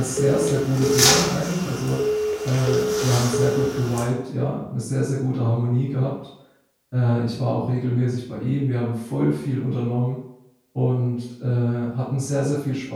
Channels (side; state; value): both; identical; correlation 1.00